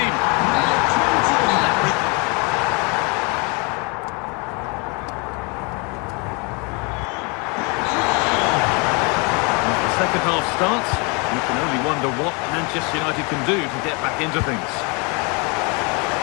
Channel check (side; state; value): right; quieter; 31.5 dB